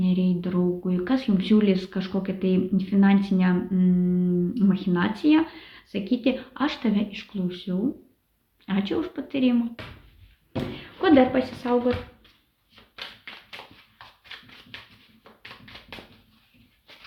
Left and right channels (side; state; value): both; identical; correlation 1.00